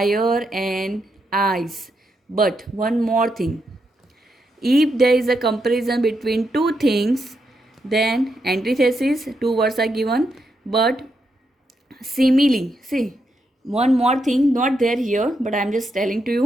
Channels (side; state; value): both; normal; correlation 0.82